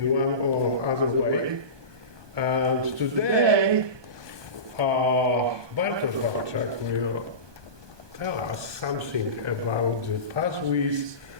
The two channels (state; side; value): late; left; 1.2 ms